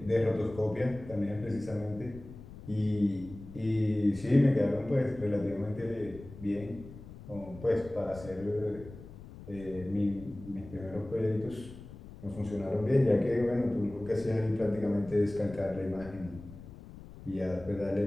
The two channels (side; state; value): left; noise; rumble, 16 dB below the sound